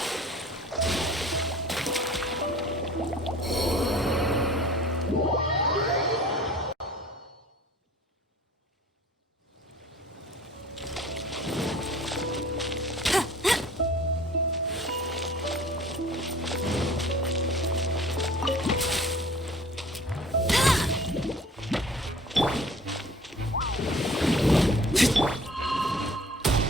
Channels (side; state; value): both; normal; correlation 0.48